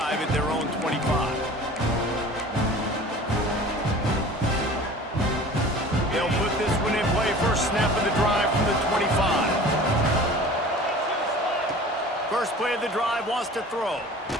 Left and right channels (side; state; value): both; normal; correlation 0.42